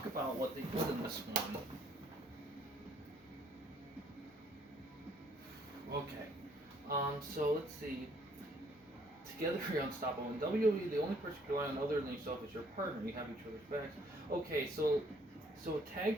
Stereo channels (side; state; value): both; normal; correlation 0.63